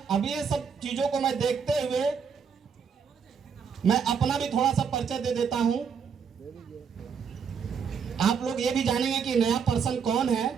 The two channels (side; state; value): left; quieter; 6.6 dB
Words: अब ये सब चीजों को मैं देखते हुए मैं अपना भी थोड़ा सा परिचय दे देता हूं। आप लोग ये भी जानेंगे कि नया पर्सन कौन है